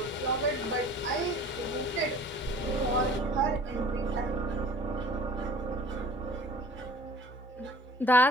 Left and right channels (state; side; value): normal; both; correlation 0.47